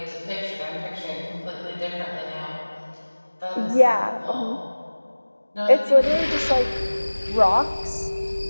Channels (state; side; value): inverted; both; correlation -1.00